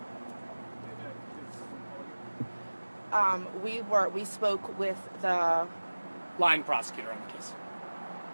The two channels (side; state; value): both; inverted; correlation -1.00